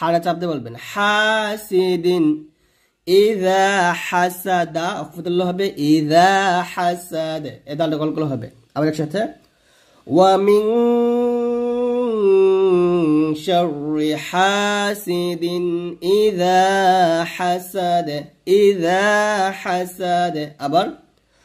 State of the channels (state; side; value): identical; both; correlation 1.00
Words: চাপতে বলবেন, হাসিদিন, ইযা হাসাদা অফতুল্লাহ হবে, ইযা হাসাদ, এ দালটা কলকল হবে। আবার একসাথে, ওয়া মিং শাররি হাসিদিন ইযা হাসাদ, ইযা হাসাদ। আবার